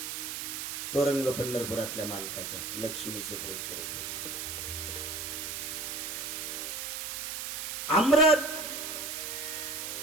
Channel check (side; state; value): right; noise; hiss, 4 dB below the sound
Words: तो रंग पंढरपुरातल्या मालकाचा लक्ष्मी सुप्रत करून दिली. अमृत,